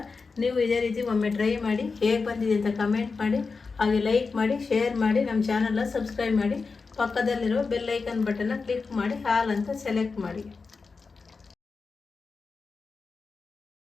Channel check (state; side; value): quieter; right; 4.5 dB